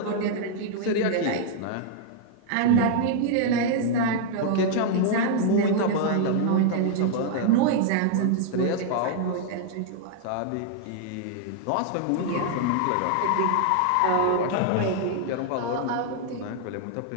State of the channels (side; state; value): both; different; correlation 0.00